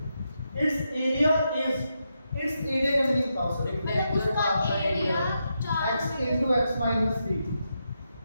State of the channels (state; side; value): inverted; both; correlation -0.84